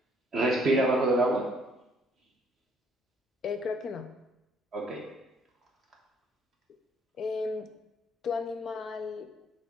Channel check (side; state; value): both; normal; correlation 0.64